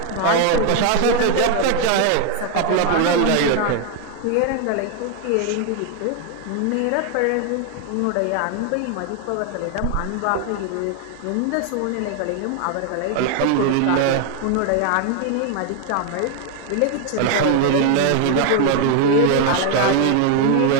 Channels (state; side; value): different; both; correlation 0.01